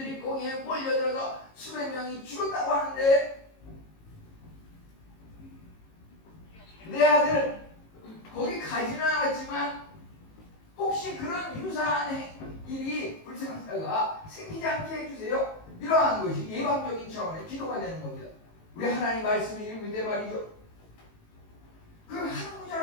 거기에 몰려들어서 수백 명이 죽었다고 하는데, 내 아들 거기 가지는 않았지만 혹시 그런 유사한 일이 불상사가 생기지 않게 해주세요. 이러한 것이 예방적인 차원의 기도가 되는 겁니다. 우리 하나님 말씀을 읽을 때 말이죠. 그 한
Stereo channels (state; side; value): late; right; 18 ms